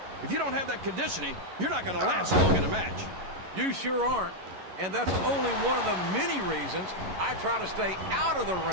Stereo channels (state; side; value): late; left; 11 ms